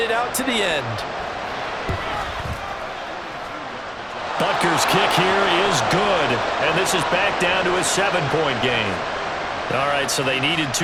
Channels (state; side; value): identical; both; correlation 1.00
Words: out to the end. Butker's kick here is good, and this is back down to a 7-point game. All right, so they needed